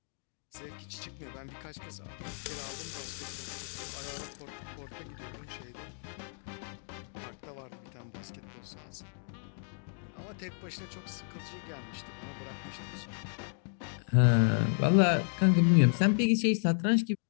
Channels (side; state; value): right; silent; 56 dB below the other